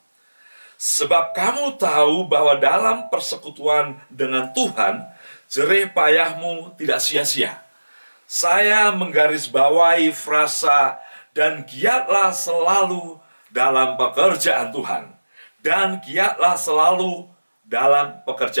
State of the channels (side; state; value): both; inverted; correlation -1.00